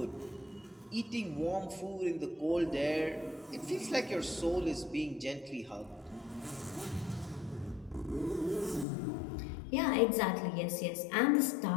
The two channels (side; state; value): right; drops out; at 8.8 s